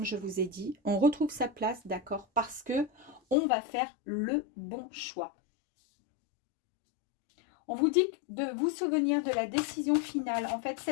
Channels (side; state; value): right; drops out; at 3.4 s